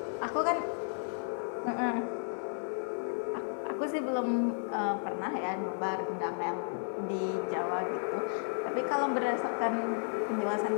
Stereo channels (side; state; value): right; silent; 56 dB below the other